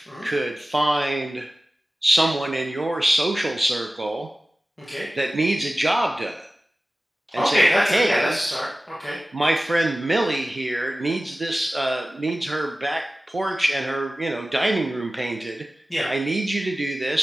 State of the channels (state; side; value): normal; both; correlation 0.96